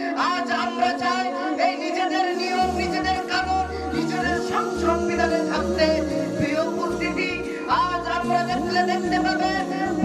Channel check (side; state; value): both; identical; correlation 1.00